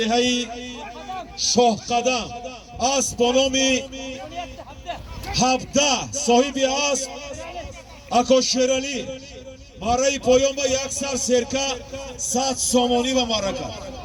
شاه قدم اسب به نام 17 صاحب اسب اکا شیرالی مارای پایان با یک سر سرکه 100 سامانی و مارکت.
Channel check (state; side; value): identical; both; correlation 1.00